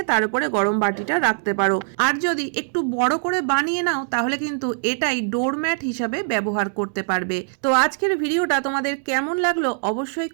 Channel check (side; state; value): left; silent; digital silence